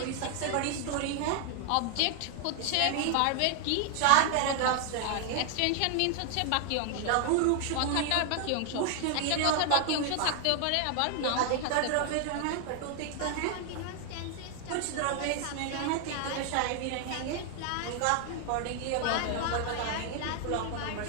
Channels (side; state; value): both; different; correlation 0.00